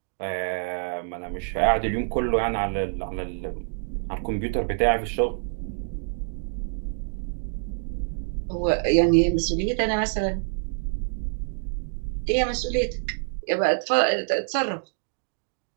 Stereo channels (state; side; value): silent; left; digital silence